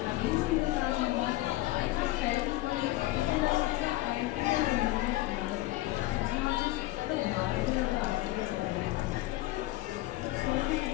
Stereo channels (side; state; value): right; quieter; 17.8 dB